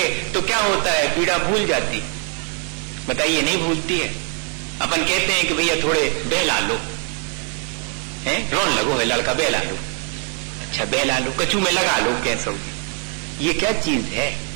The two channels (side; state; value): left; quieter; 36.6 dB